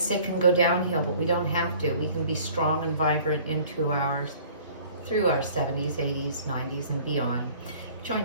sick and go downhill, but we don't have to. We can be strong and vibrant through our 70s, 80s, 90s, and beyond.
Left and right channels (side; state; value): both; inverted; correlation -0.51